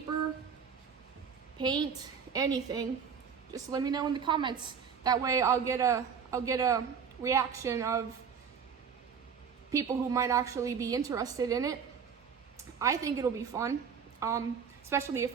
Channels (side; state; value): left; quieter; 6.7 dB